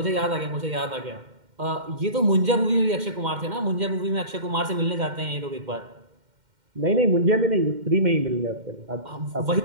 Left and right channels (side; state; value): left; late; 2.1 ms